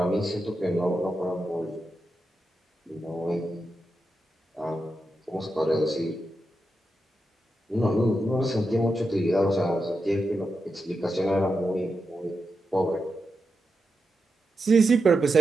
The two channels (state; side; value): normal; both; correlation 0.88